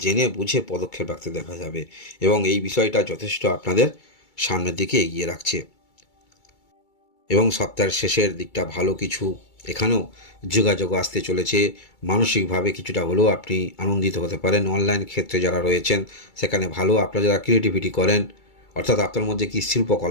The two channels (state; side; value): late; right; 2.3 ms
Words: জেনে বুঝে পদক্ষেপ রাখতে দেখা যাবে। এবং এই বিষয়টা যথেষ্ট আপনাদের সামনের দিকে এগিয়ে রাখছে। এবং সপ্তাহের শেষের দিকটা ভালো কিছু এখানেও যোগাযোগ আসতে চলেছে। মানসিকভাবে কিছুটা হলেও আপনি আনন্দিত হতে পারেন। অনলাইন ক্ষেত্রে যারা রয়েছেন সেখানে ভালো, আপনারা যারা ক্রিয়েটিভিটি করেন, অর্থাৎ আপনার মধ্যে কি